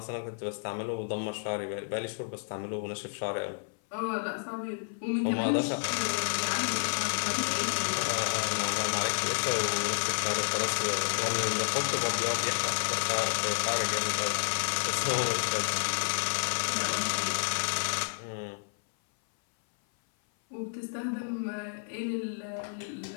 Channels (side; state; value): right; silent; 57 dB below the other